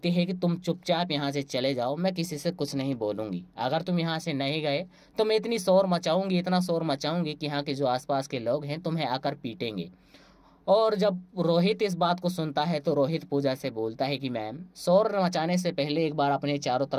है कि तुम चुपचाप यहाँ से चले जाओ, मैं किसी से कुछ नहीं बोलूँगी। अगर तुम यहाँ से नहीं गए तो मैं इतनी शोर मचाऊंगी, इतना शोर मचाऊंगी कि यहाँ के जो आसपास के लोग हैं तुम्हें आकर पीटेंगे। और जब रोहित इस बात को सुनता है तो रोहित पूजा से बोलता है कि मैम, शोर मचाने से पहले एक बार अपने चारों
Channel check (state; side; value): identical; both; correlation 1.00